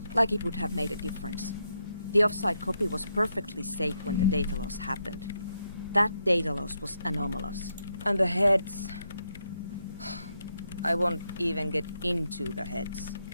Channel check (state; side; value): inverted; both; correlation -0.81